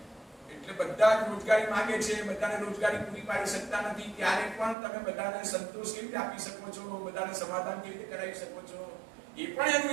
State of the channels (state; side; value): drops out; left; at 4.8 s